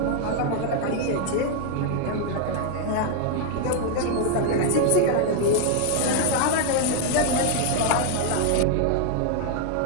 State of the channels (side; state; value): both; different; correlation 0.00